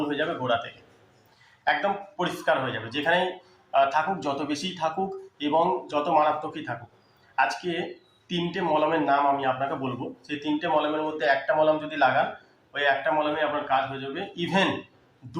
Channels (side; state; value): both; identical; correlation 1.00